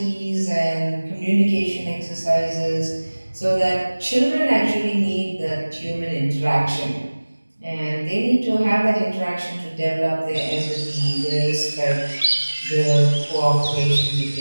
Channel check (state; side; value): inverted; both; correlation -1.00